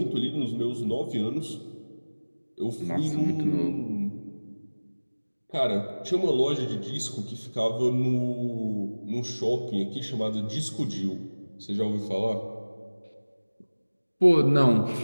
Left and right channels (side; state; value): both; inverted; correlation -1.00